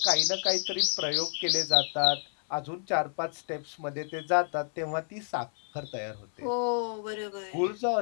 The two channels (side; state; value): right; silent; 58 dB below the other